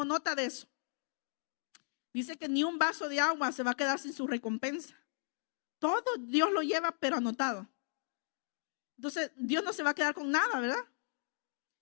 nota de eso. Dice que ni un vaso de agua se va a quedar sin su recompensa. Todo Dios lo lleva, pero anotado. Entonces, Dios no se va a quedar con nada, ¿verdad?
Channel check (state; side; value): silent; right; digital silence